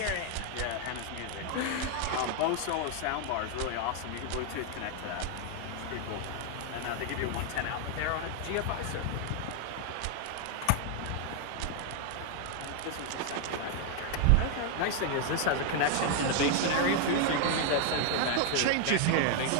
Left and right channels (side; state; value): both; different; correlation 0.00